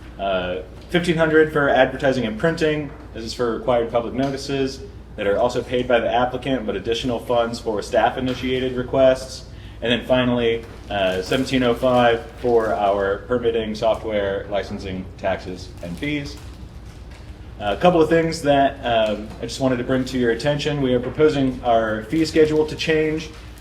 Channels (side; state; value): both; identical; correlation 1.00